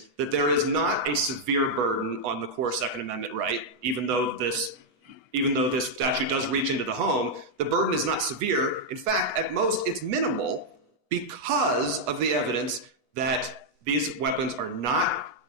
that there is not a severe burden on the core Second Amendment right, even though this statute does reach into the home. The burden is not severe. In fact, at most, it's minimal because of the evidence that these weapons are not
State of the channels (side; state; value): left; late; 8.1 ms